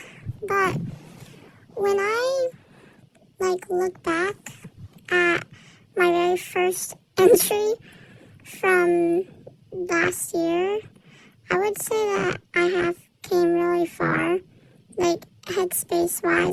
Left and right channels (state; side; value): identical; both; correlation 1.00